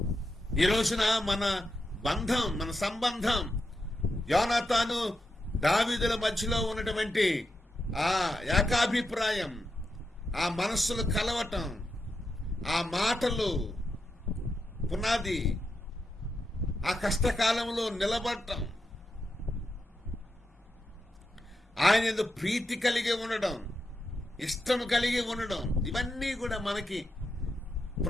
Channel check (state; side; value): normal; both; correlation 0.86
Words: ఈ రోజున మన బంధం, మన సంబంధం, యోనాతాను దావీదుల మధ్యలో ఉన్నటువంటి ఆ ఏకాభిప్రాయం, ఆ మనస్సులు కలవటం, ఆ మాటలు పునాది, ఆ కష్టకాలంలో నిలబడటం, ఆయన యందు ప్రీతి కలిగి ఉండడం, ఇష్టం కలిగి ఉండడం, ఇవన్నీ కూడా మనకి